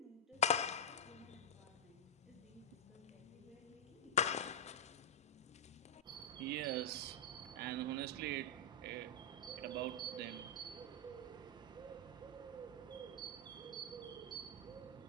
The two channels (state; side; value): normal; both; correlation -0.07